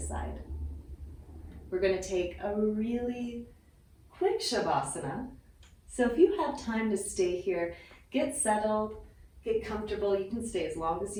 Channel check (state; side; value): identical; both; correlation 1.00